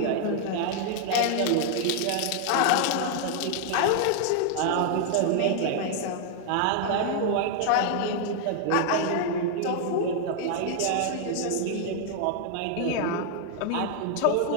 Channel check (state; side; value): different; both; correlation 0.00